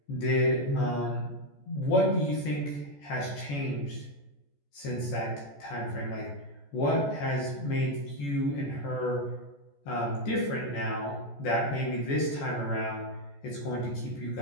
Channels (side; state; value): right; late; 14 ms